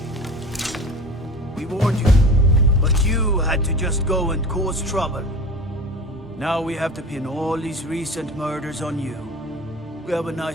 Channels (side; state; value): both; normal; correlation 0.36